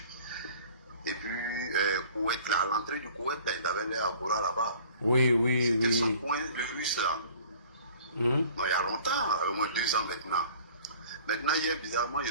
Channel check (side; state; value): both; inverted; correlation -0.49